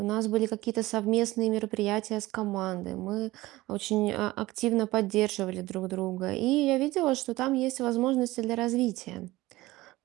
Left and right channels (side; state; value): left; quieter; 18.6 dB